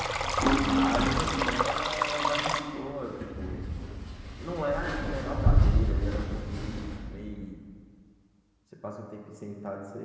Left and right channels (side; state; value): both; identical; correlation 1.00